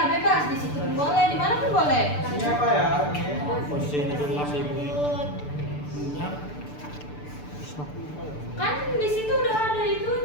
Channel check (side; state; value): right; late; 6.8 ms